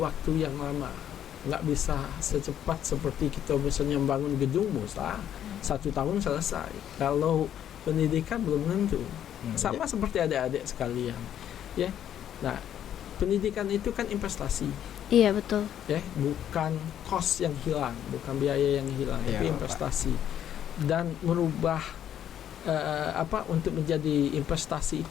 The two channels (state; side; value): quieter; right; 10.3 dB